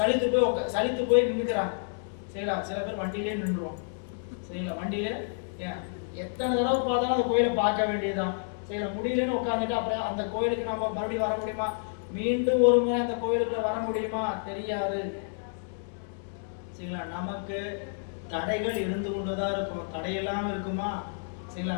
போய் நின்றுக்கிறாங்க. சரிங்களா? சில பேர் வண்டியிலே நின்றுவோம். சரிங்களா? வண்டியிலே ஏன் எத்தனை தடவை பார்த்தாலும் அந்த கோயிலை பார்க்க வேண்டியதுதான். சரிங்களா? முடியலன்னு உட்காந்துட்டு அப்புறம் அந்த கோயிலுக்கு நம்ம மறுபடியும் வர முடியுமா? மீண்டும் ஒரு முறை அந்த கோயிலுக்குள்ள வர முடியுமா? தெரியாது. சரிங்களா? நமக்கு தடைகள் இருந்து கொண்டுதான் இருக்கும். தடை இல்லாமல் இருக்குமா? சரிங்களா?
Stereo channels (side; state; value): right; silent; digital silence